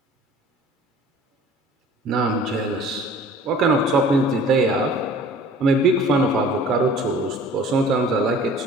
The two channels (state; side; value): normal; both; correlation 0.48